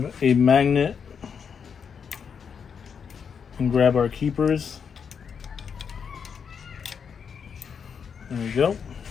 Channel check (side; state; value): right; quieter; 6.7 dB